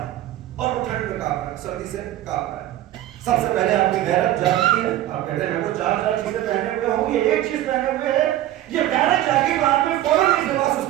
اور وہ ٹھنڈ میں کاپ رہا ہے, سردی سے کاپ رہا ہے. سب سے پہلے آپ کی غیرت جاگتی ہے. آپ کہتے ہیں میں تو چار چیزیں پہنے ہوئے ہوں, یہ ایک چیز پہنے ہوئے ہے. یہ غیرت جاگی تو آپ نے فوراً اس لباس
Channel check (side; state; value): left; quieter; 13.7 dB